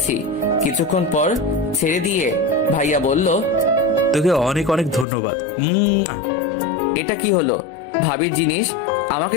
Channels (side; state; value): right; drops out; at 5.1 s